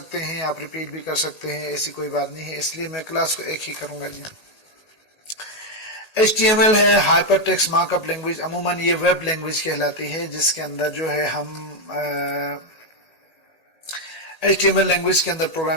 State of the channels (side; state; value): left; late; 1.8 ms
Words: हैं, आप रिपीट भी कर सकते हैं, ऐसी कोई बात नहीं है। इसलिए मैं क्लास को एक ही करूंगा जी। HTML है हाइपर टेक्स्ट मार्कअप लैंग्वेज। अमूमन ये वेब लैंग्वेज कहलाती है जिसके अंदर जो है हम HTML लैंग्वेज के अंदर